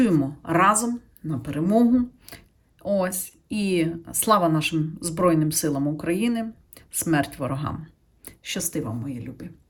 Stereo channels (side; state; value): both; identical; correlation 1.00